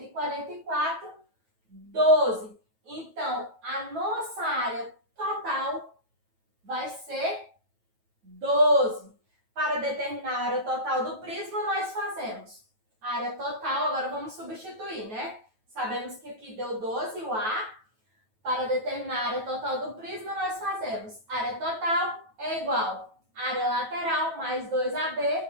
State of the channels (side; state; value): left; late; 9.2 ms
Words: 12. Então, a nossa área total vai ser 12. total do prisma nós fazemos. A área total, agora vamos substituir, né? Sabemos que aqui deu 12 o A. Para determinar a área total do prisma, nós fazemos área total é igual a área lateral mais 2AB.